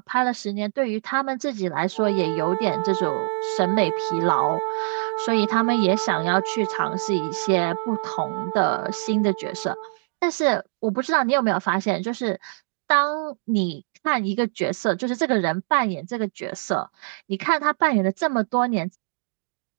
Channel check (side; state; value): left; silent; digital silence